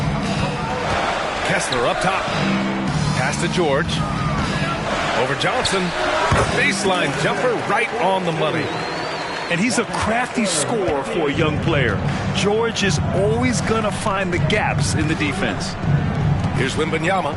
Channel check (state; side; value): identical; both; correlation 1.00